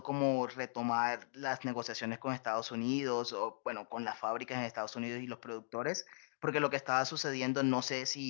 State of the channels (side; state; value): right; silent; digital silence